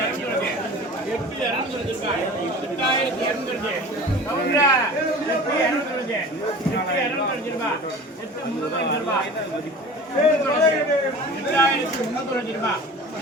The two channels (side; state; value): both; normal; correlation 0.39